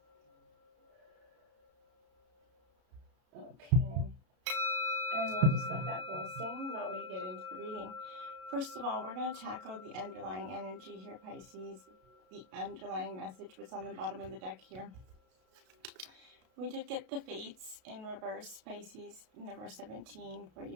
Okay. And we'll just let that bowl sing while we get into the reading. First of all, we're going to tackle the underlying energy here, Pisces. The underlying message, what's on the bottom of the deck here. We did get the Fates in reverse, Pisces, number 17 for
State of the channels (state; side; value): late; left; 33 ms